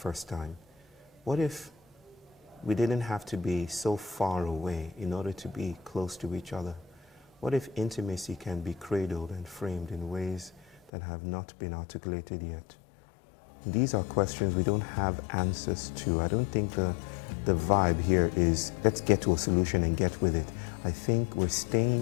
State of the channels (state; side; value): drops out; right; at 10.9 s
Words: time? What if we didn't have to be so far away in order to be close to each other? What if intimacy can be cradled and framed in ways that have not been articulated yet? These are questions we don't have answers to. I don't think the vibe here is let's get to a solution and get with it. I think we're